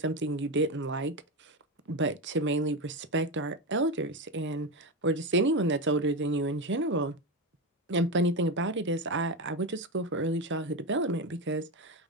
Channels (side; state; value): both; normal; correlation 0.15